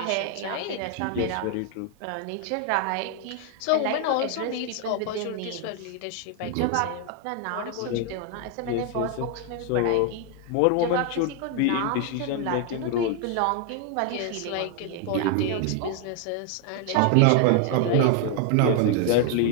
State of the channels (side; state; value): both; different; correlation 0.00